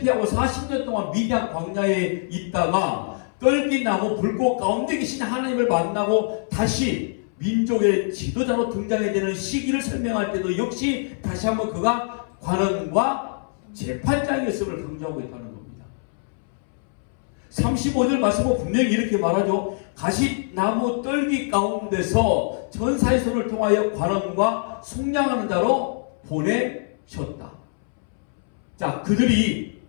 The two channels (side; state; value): right; silent; 63 dB below the other